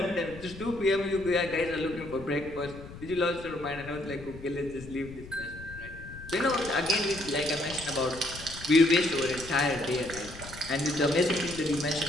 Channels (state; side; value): noise; left; rumble, 15 dB below the sound